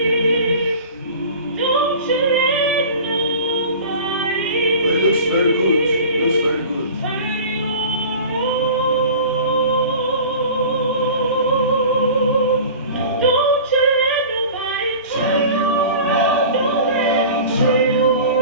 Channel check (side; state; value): both; inverted; correlation -0.39